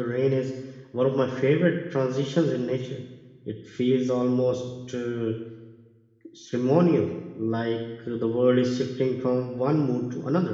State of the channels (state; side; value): identical; both; correlation 1.00